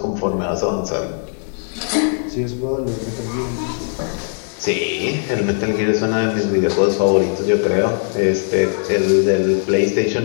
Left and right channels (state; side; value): silent; right; digital silence